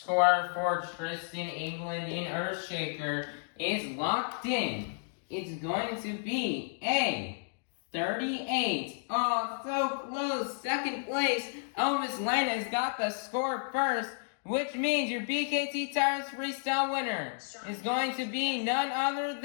for Tristan England in Earthshaker is locked in. It's going to be a 38. Oh, so close. Second place. Elvis Lainez got the score first, which means your BKT Tires Freestyle winner is going to be none other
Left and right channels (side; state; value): right; silent; digital silence